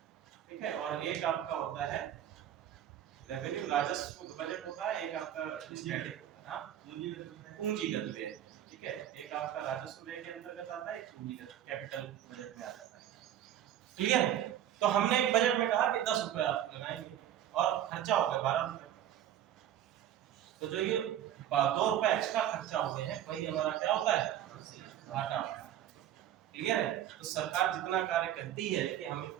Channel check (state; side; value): quieter; left; 11.3 dB